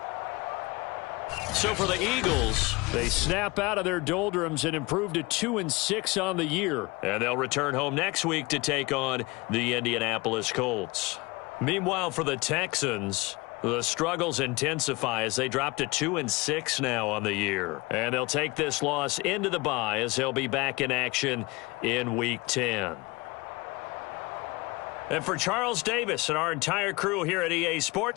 So for the Eagles, They snap out of their doldrums and improve to 2-6 on the year. and they'll return home next week to take on the Indianapolis Colts. Meanwhile, for the Texans, the struggles intensify as they drop to 2-6 now on the year. And they'll take this loss into the bye as they'll be back in action in Week 10. And for Charles Davis and our entire crew here at EA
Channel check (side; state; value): right; quieter; 24.2 dB